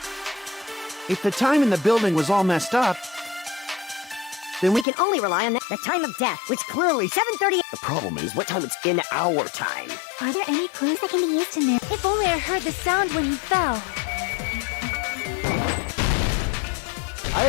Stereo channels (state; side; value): drops out; right; at 4.9 s